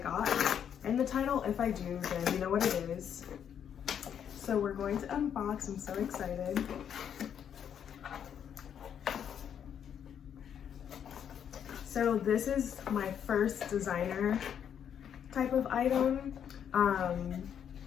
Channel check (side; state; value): right; quieter; 8.6 dB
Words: got in the title. If I do, then you know what it is. So we're going to unbox. I'm so excited. So this is my first designer type of item.